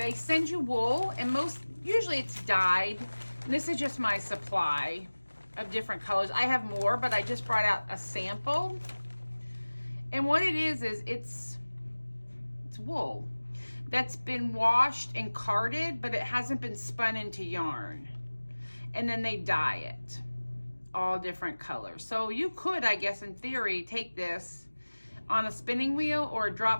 send you wool and usually it's dyed. And this is just my supply of different colors. I have more, but I just brought out a sample. And what it is it's wool that's been washed and carded, but it hasn't been spun into yarn. And then they dye it, all different colors. So you could, I guess, in theory, take this on a spinning wheel or a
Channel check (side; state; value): both; inverted; correlation -1.00